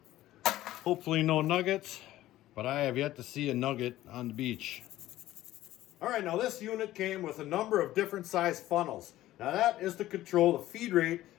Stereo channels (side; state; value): right; quieter; 15.0 dB